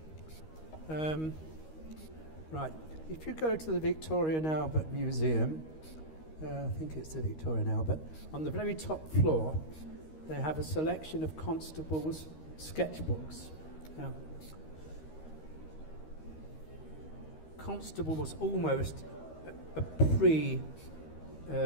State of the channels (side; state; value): right; late; 13 ms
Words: Right. If you go to the Victoria and Albert Museum, I think it's the Victoria and Albert, on the very top floor, they have a selection of Constable's sketchbooks. Now, Constable was almost a